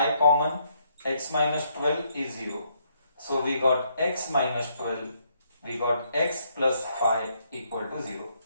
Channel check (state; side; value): inverted; both; correlation -0.72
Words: common, x minus 12 is 0. So we got x minus 12, we got x plus 5 equal to 0.